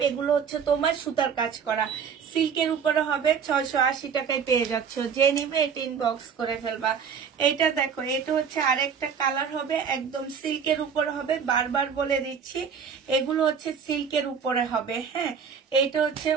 এগুলো হচ্ছে তোমার সুতার কাজ করা, সিল্কের উপরে হবে। 680 টাকায় পেয়ে যাচ্ছ। যে নিবে এটা ইনবক্স করে ফেলবা। এটা দেখো, এটা হচ্ছে আরেকটা কালার হবে, একদম সিল্কের উপরে হবে। বারবার বলে দিচ্ছি এগুলো হচ্ছে সিল্কের উপরে হবে, হ্যাঁ। এইটা হচ্ছে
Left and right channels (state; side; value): quieter; left; 6.8 dB